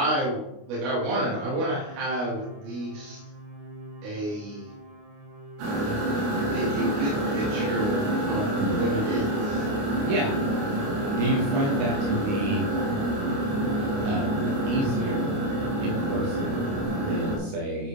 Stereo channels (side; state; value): left; late; 29 ms